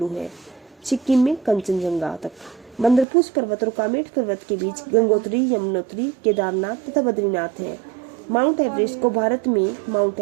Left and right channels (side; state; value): left; drops out; at 3.1 s